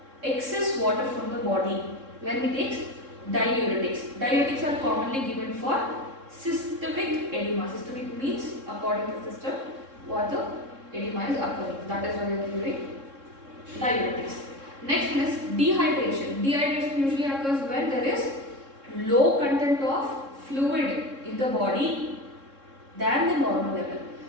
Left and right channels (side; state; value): left; late; 3.7 ms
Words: excess water from the body when he takes diuretics. Diuretics are commonly given for systemic edema. Systemic means according to the system what the edema is occurring. That is why we are giving diuretics. Next one is dehydration. Dehydration usually occurs when there is low content of fluid in the body than the normal level.